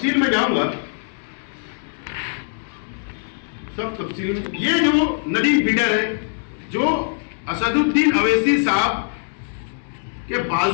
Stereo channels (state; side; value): silent; right; 64 dB below the other